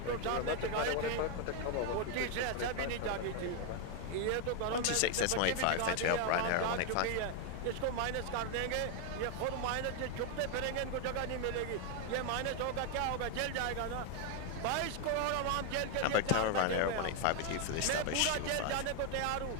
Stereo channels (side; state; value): both; different; correlation 0.01